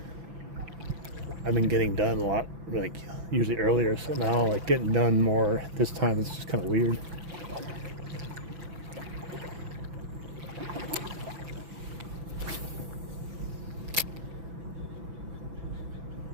I've been getting done a lot, like usually earlier. So now, like getting done more this time, it's just kind of weird.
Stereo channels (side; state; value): left; late; 6.0 ms